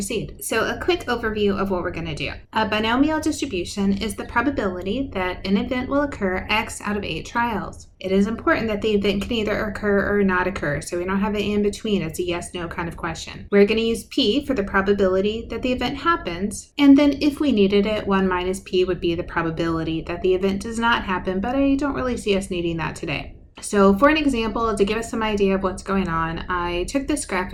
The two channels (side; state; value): both; identical; correlation 1.00